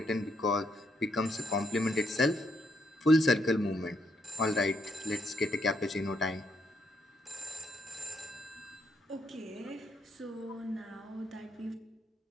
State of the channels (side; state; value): both; normal; correlation 0.75